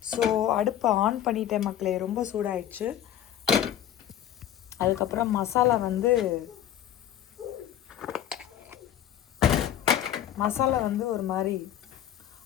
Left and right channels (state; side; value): quieter; right; 11.0 dB